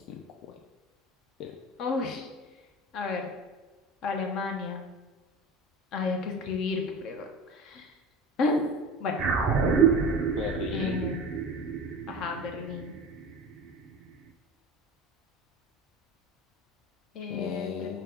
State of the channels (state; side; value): normal; both; correlation 0.33